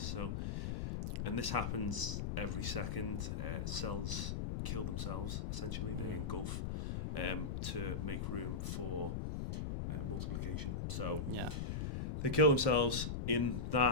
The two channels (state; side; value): noise; left; rumble, 2 dB below the sound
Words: and this happens every second. Cells kill themselves. Essentially, they engulf to make room for multiplication. So Yeah. they kill themselves. In